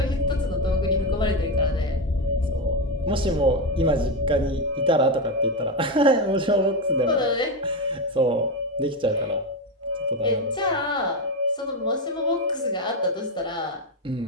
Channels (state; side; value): normal; both; correlation 0.11